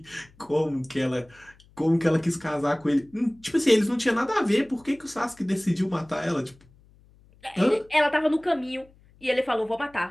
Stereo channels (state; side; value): noise; left; hum, 28 dB below the sound